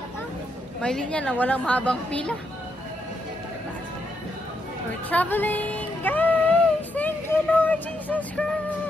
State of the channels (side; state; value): both; normal; correlation 0.79